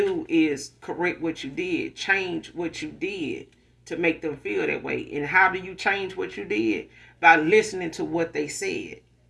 is correct what you did, change what you did to make them feel that way. And how do you change what you did? By listening to what they said.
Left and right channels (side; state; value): both; identical; correlation 1.00